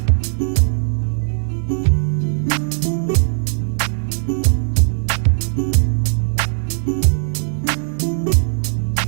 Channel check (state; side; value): silent; left; digital silence